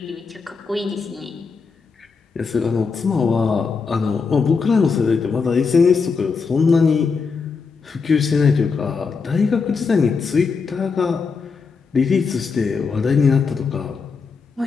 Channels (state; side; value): quieter; right; 5.1 dB